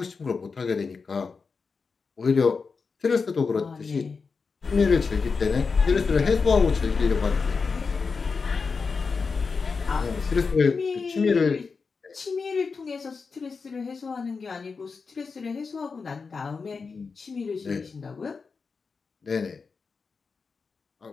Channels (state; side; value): quieter; right; 4.9 dB